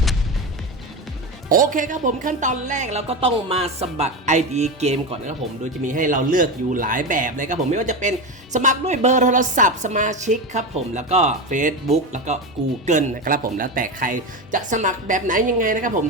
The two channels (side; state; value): both; normal; correlation 0.19